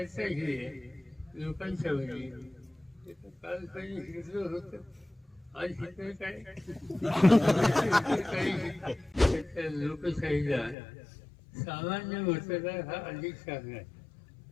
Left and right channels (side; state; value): right; drops out; at 10.8 s